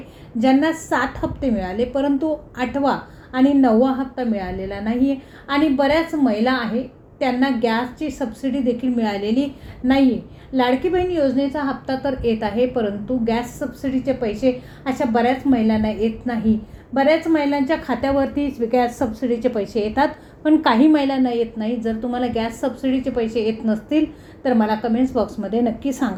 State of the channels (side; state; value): both; identical; correlation 1.00